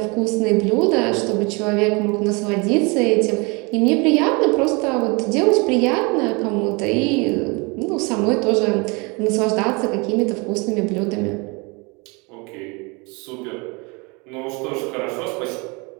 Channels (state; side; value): quieter; left; 28.7 dB